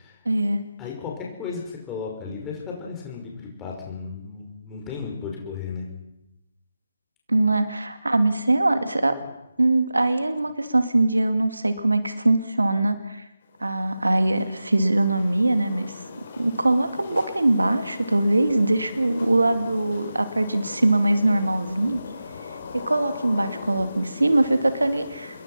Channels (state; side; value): inverted; both; correlation -0.93